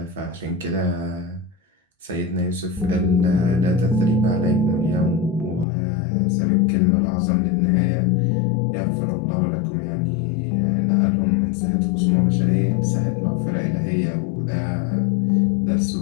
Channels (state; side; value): drops out; right; at 5.7 s